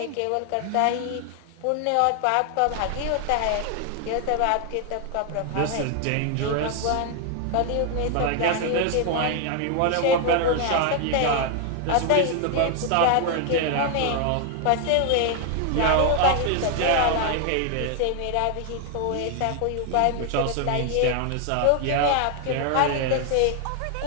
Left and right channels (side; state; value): both; different; correlation 0.00